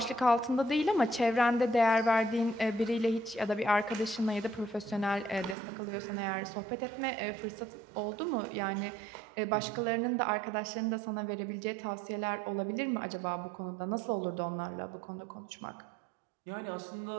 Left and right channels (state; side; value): drops out; left; at 5.6 s